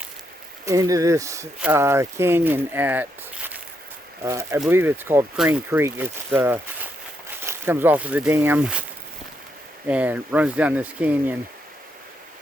into this canyon at, I believe it's called Crane Creek. It's comes off of the dam and runs down this canyon.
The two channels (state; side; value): normal; both; correlation 0.79